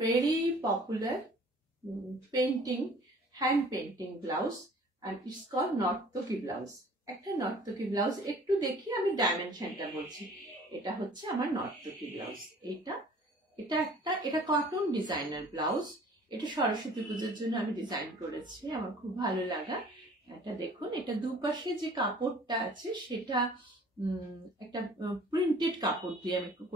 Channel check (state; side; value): normal; both; correlation 0.51